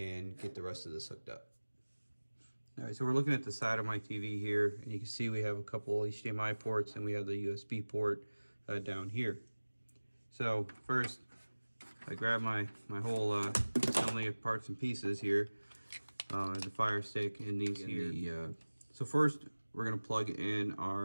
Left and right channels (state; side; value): inverted; both; correlation -1.00